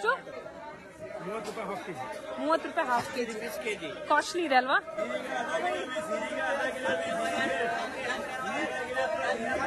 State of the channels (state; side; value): identical; both; correlation 1.00